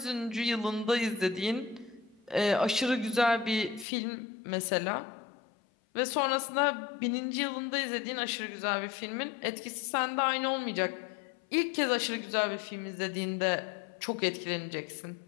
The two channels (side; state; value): right; drops out; at 3.9 s